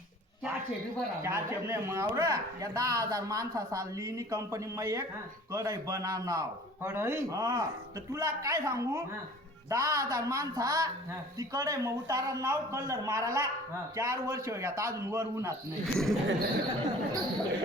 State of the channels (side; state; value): both; normal; correlation 0.47